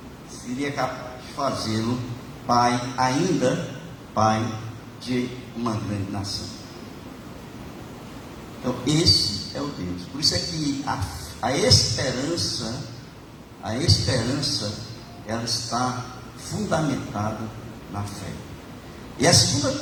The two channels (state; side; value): identical; both; correlation 1.00